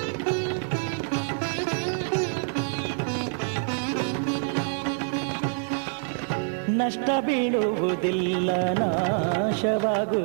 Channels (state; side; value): silent; left; 57 dB below the other